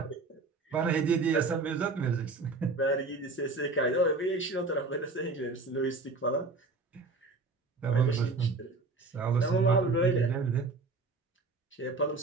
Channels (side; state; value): left; quieter; 3.6 dB